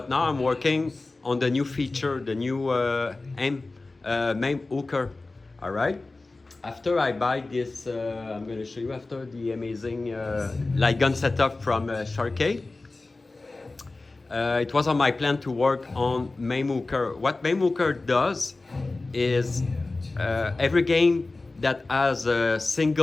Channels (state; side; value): quieter; right; 3.3 dB